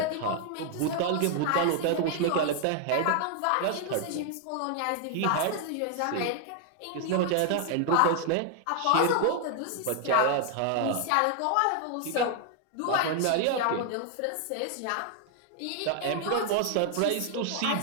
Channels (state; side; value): different; both; correlation 0.00